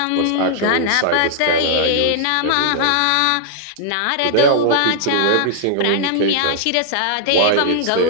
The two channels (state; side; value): different; both; correlation -0.01